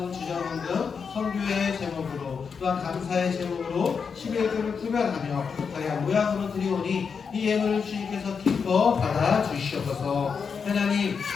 주정헌금 선교의 제목으로 또한 감사의 제목으로 11조를 구별하며 다양한 모양으로 드리오니 이 예물을 주님께서 기뻐 받아 주시옵소서. 하나님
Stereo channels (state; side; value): quieter; right; 5.9 dB